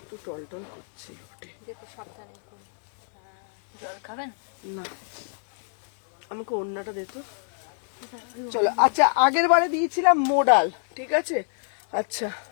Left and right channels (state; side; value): silent; right; digital silence